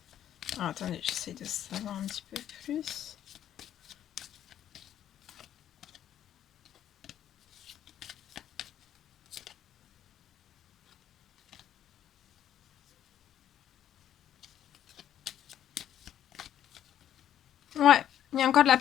Ah, attendez, j'essaie de savoir un petit peu plus. Ouais, il y a encore de la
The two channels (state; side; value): quieter; right; 10.7 dB